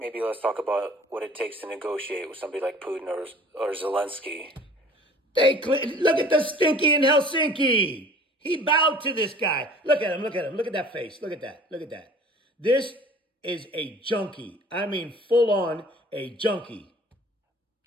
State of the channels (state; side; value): normal; both; correlation 0.48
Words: let's talk about what it takes to negotiate with somebody like Putin or Zelensky. Look at the Stinky in Helsinki. He bowed to this guy. Look at him. Look at that face. Look at that. This is a junkie. I mean, full on a junkie.